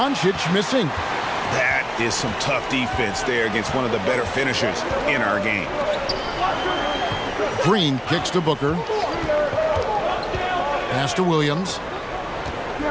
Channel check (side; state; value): both; identical; correlation 1.00